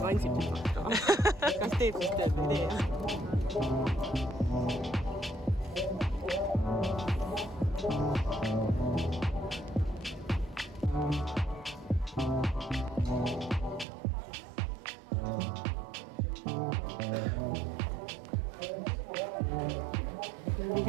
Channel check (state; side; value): drops out; left; at 13.9 s